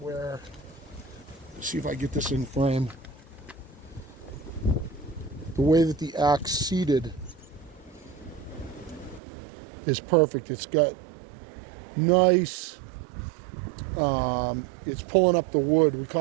let's see if I get this in frame. The way that the axe seated is perfect. It's got nice, it's pulling up the wood. We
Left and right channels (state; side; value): drops out; left; at 9.2 s